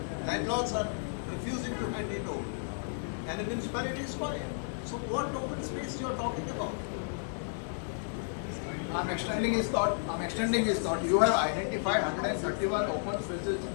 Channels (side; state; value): right; silent; digital silence